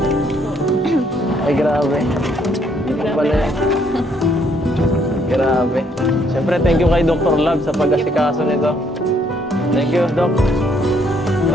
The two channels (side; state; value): both; normal; correlation 0.68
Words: Ay, grabe. Dito pala yan. Grabe. Siyempre, thank you kay Dr. Love sa pag-asikaso nito. Thank you, Doc.